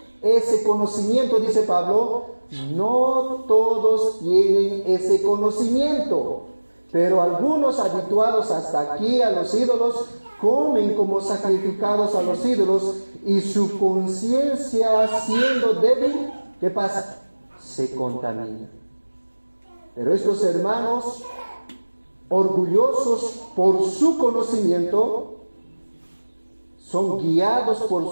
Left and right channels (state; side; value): inverted; both; correlation -1.00